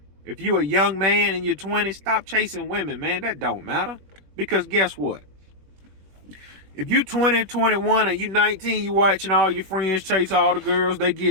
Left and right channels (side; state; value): left; late; 21 ms